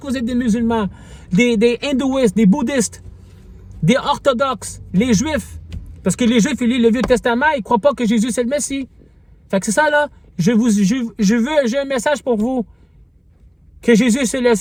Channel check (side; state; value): both; identical; correlation 1.00